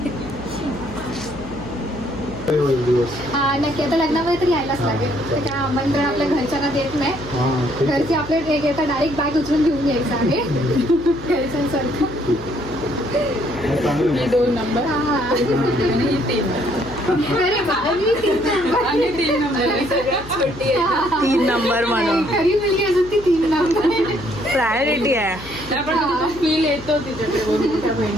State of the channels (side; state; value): left; noise; hum, 15 dB below the sound